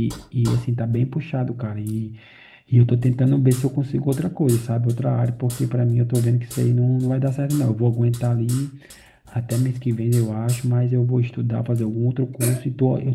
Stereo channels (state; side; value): identical; both; correlation 1.00